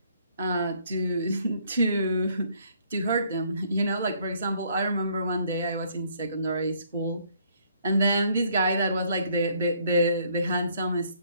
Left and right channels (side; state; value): both; inverted; correlation -0.65